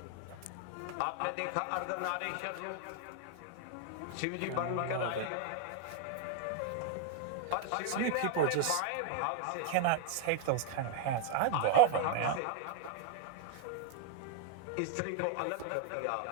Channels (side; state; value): both; different; correlation 0.00